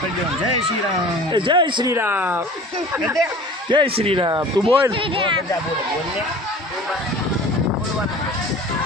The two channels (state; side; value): normal; both; correlation 0.43